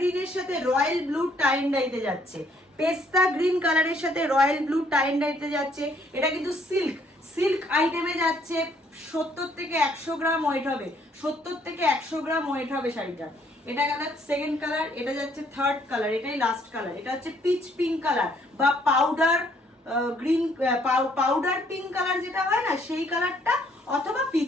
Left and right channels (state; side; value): normal; both; correlation 0.66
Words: সাথে রয়্যাল ব্লু টাই অ্যান্ড ডাইতে যাচ্ছে, পেস্তা গ্রিন কালারের সাথে রয়্যাল ব্লু টাই অ্যান্ড ডাইতে যাচ্ছে। এটা কিন্তু সিল্ক, সিল্ক আইটেমে যাচ্ছে। 70 থেকে 100 গ্রাম ওয়েট হবে, 70 থেকে 100 গ্রাম ওয়েট হবে শাড়িটা। এটা গেল সেকেন্ড কালার, এটা যাচ্ছে থার্ড কালার, এটাই লাস্ট কালার। এটা হচ্ছে পিচ পিঙ্ক কালার বা powder green, powder pink colour যেটা হয় না সেই কালারটা, অথবা